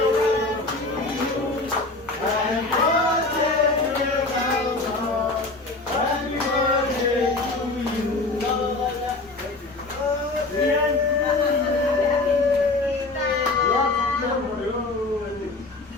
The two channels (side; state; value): right; quieter; 3.2 dB